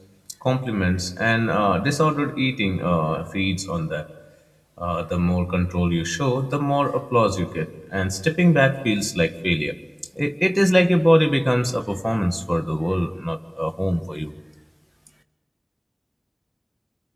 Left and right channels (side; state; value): both; identical; correlation 1.00